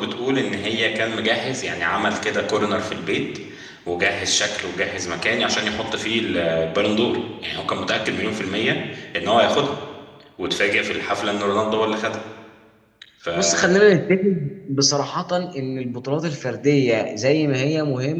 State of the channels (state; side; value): identical; both; correlation 1.00